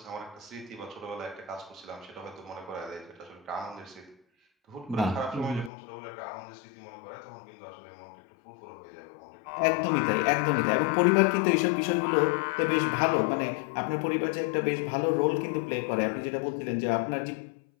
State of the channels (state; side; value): drops out; right; at 5.7 s